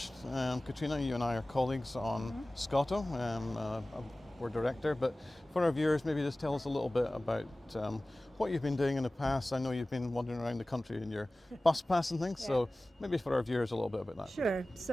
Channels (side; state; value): both; normal; correlation 0.98